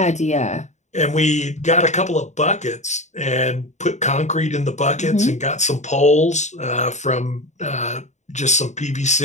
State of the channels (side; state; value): right; late; 0.34 ms